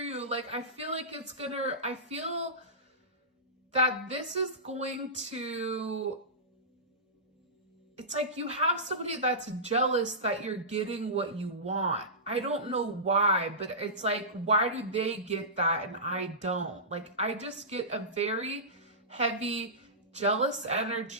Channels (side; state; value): both; normal; correlation -0.19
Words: Like, I feel like I feel that this is going to, it's like you have somebody that's jealous that you're getting what you want. I don't know why, but it's like, why do they get that and I don't? Like, I just get a very heavy, jealous